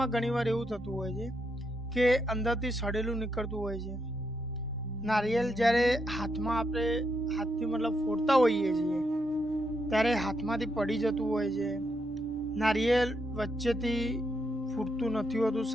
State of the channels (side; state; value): both; normal; correlation 0.80